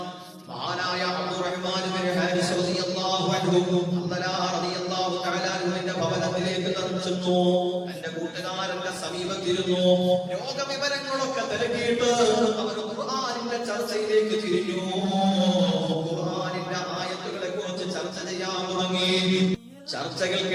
മഹാനായ അബ്ദുറഹ്മാൻ ഇബ്നു ഹാരിസ് റളിയല്ലാഹു അൻഹു ഹല്ലലാ റളിയല്ലാഹു തആല അൻഹുവിന്റെ ഭവനത്തിലേക്ക് ചെന്നു. എന്റെ കൂട്ടുകാരന്റെ സമീപത്തിരുന്നു. രോഗവിവരങ്ങളൊക്കെ തിരക്കിയിട്ട് അവർ ഖുർആനിന്റെ ചർച്ചയിലേക്ക് തിരിഞ്ഞു. ഖുർആനിന്റെ ആയത്തുകളെ കുറിച്ച് ചർച്ച ചെയ്യാൻ തുടങ്ങി.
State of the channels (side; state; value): both; identical; correlation 1.00